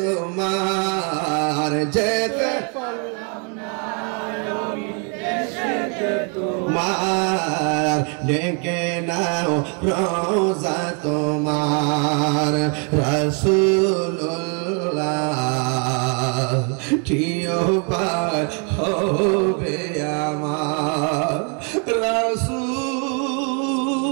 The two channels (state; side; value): quieter; left; 37.8 dB